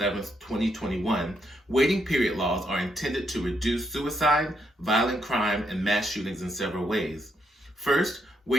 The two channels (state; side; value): normal; both; correlation 0.77